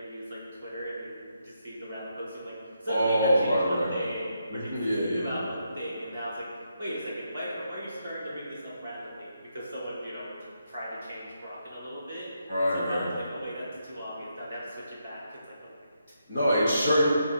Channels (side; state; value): both; inverted; correlation -0.81